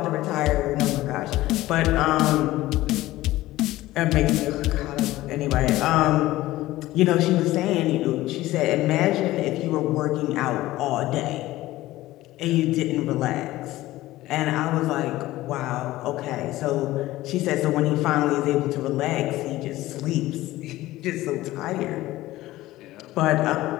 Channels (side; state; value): right; quieter; 16.8 dB